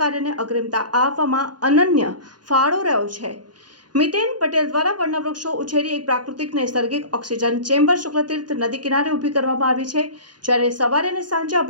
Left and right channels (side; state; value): left; late; 0.70 ms